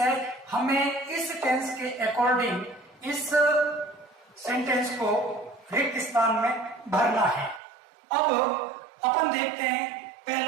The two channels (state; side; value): drops out; left; at 7.6 s